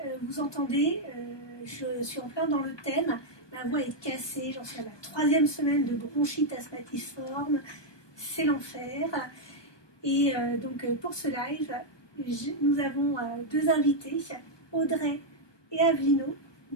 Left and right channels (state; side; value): late; right; 1.2 ms